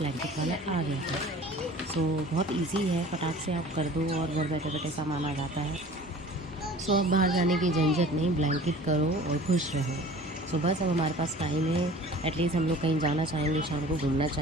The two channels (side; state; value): both; normal; correlation 0.45